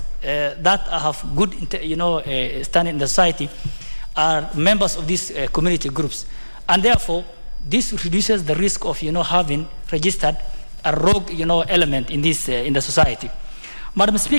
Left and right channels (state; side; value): inverted; both; correlation -1.00